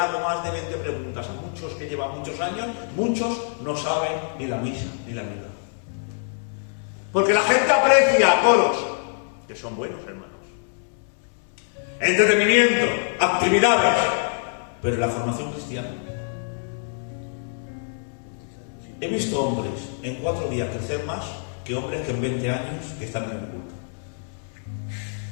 más de 20 preguntas a muchos que llevan muchos años, muchos no saben ni la misa ni la misa. Porque la gente aprecia coros, que son buenos, hermanos. Entretenimiento, actividades, pero la formación cristiana. He visto hombres en 4 días crecer más que hombres que en 20 años que están en el culto.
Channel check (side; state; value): right; silent; 62 dB below the other